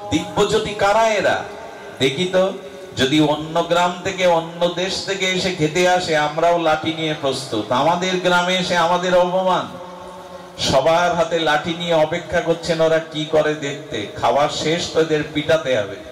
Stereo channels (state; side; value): identical; both; correlation 1.00